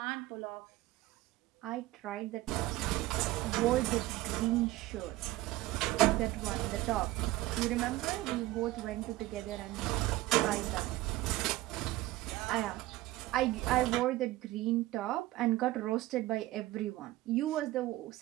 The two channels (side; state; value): left; quieter; 17.3 dB